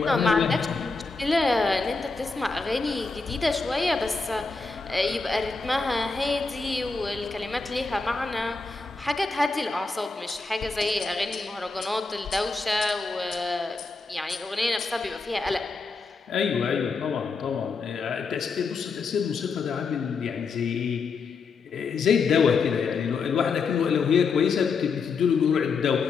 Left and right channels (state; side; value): quieter; right; 4.4 dB